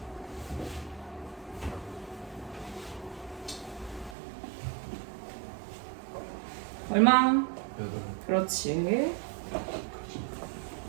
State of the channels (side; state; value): left; drops out; at 4.2 s